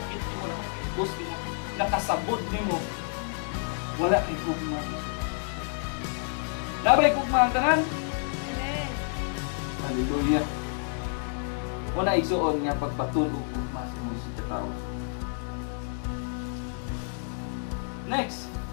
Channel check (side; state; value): right; silent; 58 dB below the other